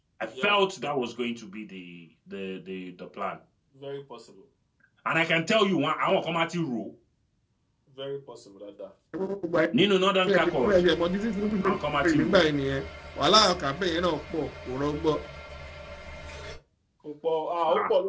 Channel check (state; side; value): identical; both; correlation 1.00